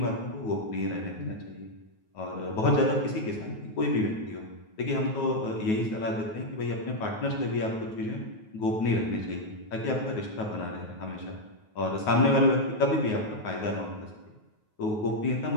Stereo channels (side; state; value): right; late; 9.4 ms